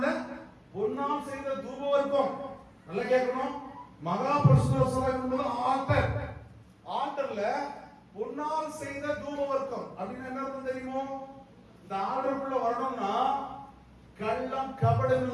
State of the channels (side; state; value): both; identical; correlation 1.00